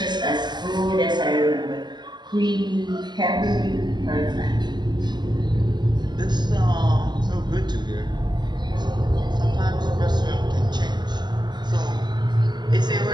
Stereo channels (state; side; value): late; left; 0.21 ms